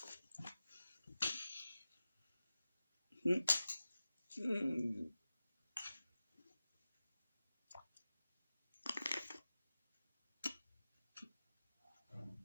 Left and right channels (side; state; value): both; inverted; correlation -0.95